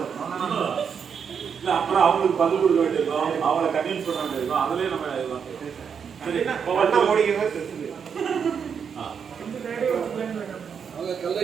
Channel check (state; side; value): quieter; left; 6.9 dB